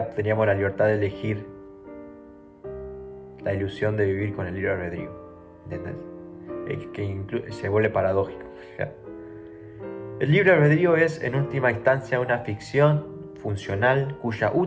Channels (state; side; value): identical; both; correlation 1.00